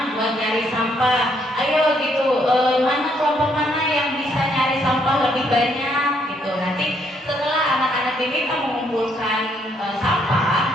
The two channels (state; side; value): normal; both; correlation 0.71